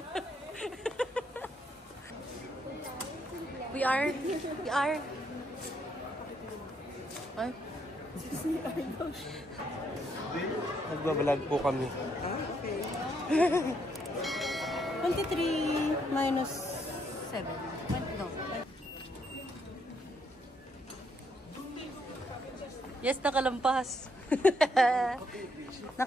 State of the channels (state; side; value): normal; both; correlation 0.74